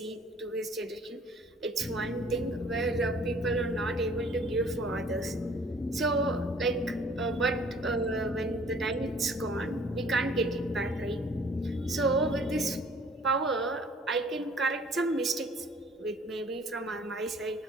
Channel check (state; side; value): normal; both; correlation 0.55